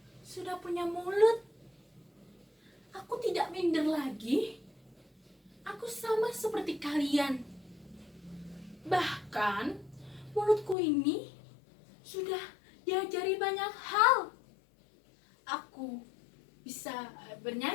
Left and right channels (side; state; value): right; drops out; at 10.8 s